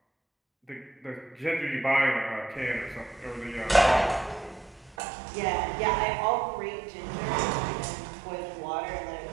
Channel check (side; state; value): left; drops out; at 5.0 s